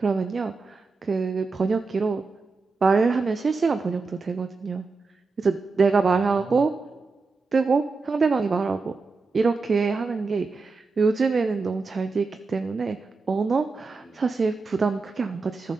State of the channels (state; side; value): quieter; left; 4.2 dB